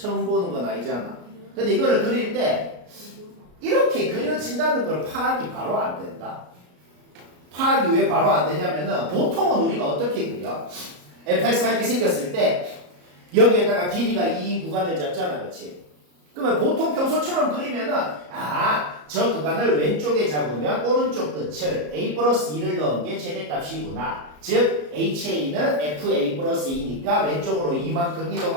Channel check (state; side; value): late; left; 33 ms